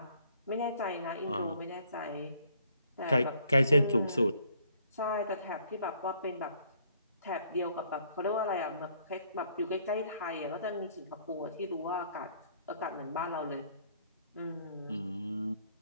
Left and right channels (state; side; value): inverted; both; correlation -0.63